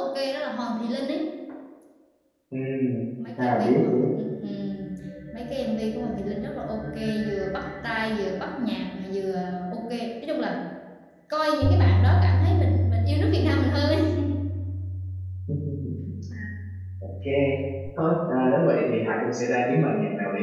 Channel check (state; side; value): identical; both; correlation 1.00